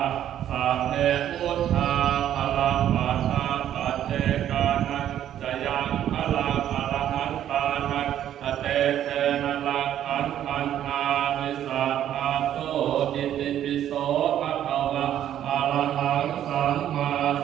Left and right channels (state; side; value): quieter; left; 11.0 dB